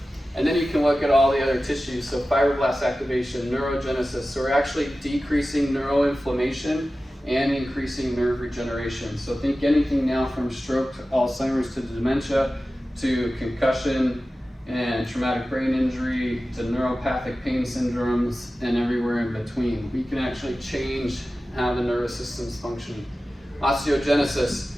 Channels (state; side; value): normal; both; correlation 0.95